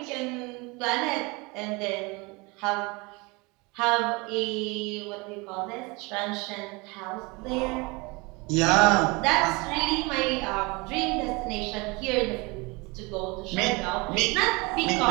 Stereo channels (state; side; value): quieter; left; 26.4 dB